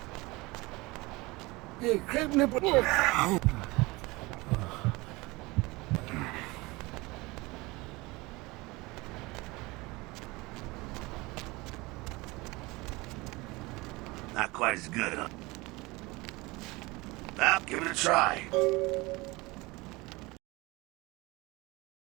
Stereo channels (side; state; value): left; quieter; 23.0 dB